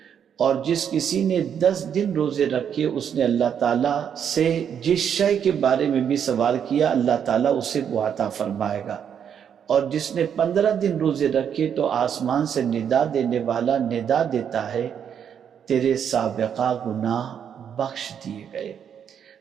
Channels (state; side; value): quieter; left; 8.2 dB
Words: اور جس کسی نے 10 دن روزے رکھے اس نے اللہ تعالیٰ سے جس شے کے بارے میں بھی سوال کیا اللہ تعالیٰ اسے وہ عطا فرمائے گا، اور جس نے 15 دن روزے رکھے تو آسمان سے ندا دینے والا ندا دیتا ہے، تیرے سابقہ گناہ بخش دیے گئے،